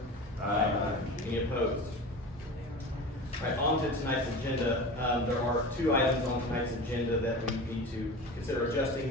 Aye. Any opposed? All right, on to tonight's agenda. There are two items on tonight's agenda that we need to consider adjusting.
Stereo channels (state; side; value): normal; both; correlation 0.32